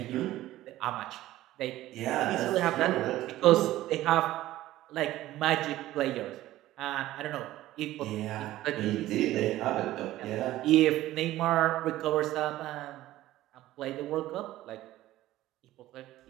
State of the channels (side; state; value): left; quieter; 15.2 dB